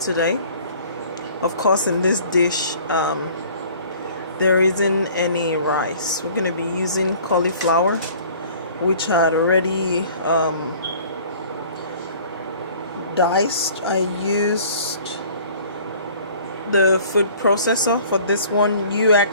today. Of course, in this dish, there isn't any rice. We're going to be using cauliflower, which I had already diced. I used the food processor for this one. You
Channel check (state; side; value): inverted; both; correlation -0.50